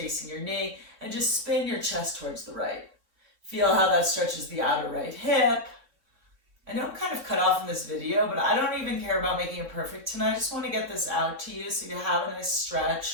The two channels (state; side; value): late; left; 3.7 ms